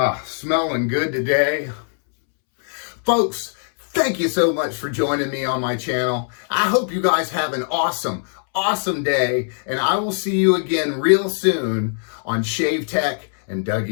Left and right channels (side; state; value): right; silent; 65 dB below the other